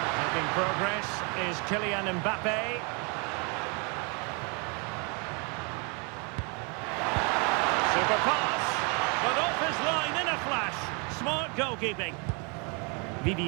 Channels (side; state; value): left; quieter; 33.7 dB